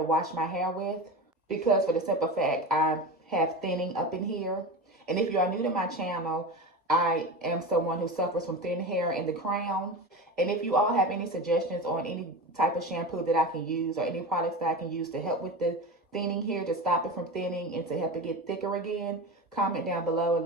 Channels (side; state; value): both; normal; correlation 0.26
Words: wash my hair with. Because for the simple fact, I have thinning up in here. And if you are new to my channel, I am someone who suffers from thin hair in the crown. And if you all have any suggestions on any type of shampoo that I can use or any products that I can use to help with the thinning here, to stop it from thinning and to help it get thicker again, comment down below and